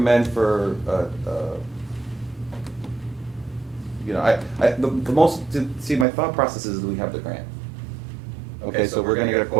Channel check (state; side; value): drops out; left; at 6.1 s